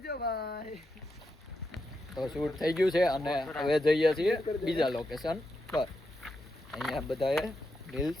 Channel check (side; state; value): both; normal; correlation 0.85